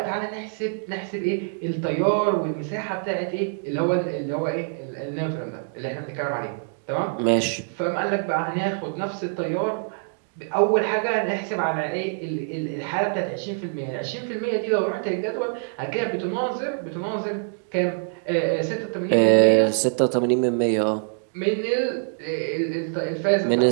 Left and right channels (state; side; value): silent; left; digital silence